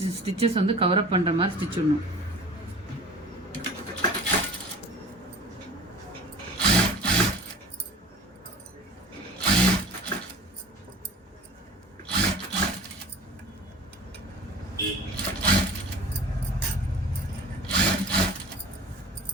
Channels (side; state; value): both; normal; correlation 0.41